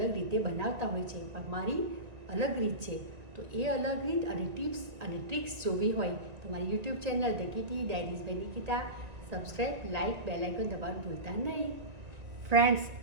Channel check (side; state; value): left; late; 2.1 ms